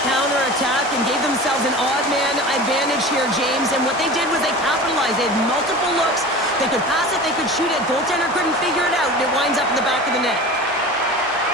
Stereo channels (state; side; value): normal; both; correlation 0.35